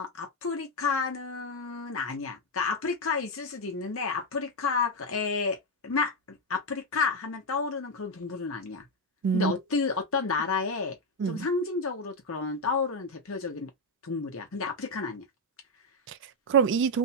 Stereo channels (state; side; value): normal; both; correlation 0.04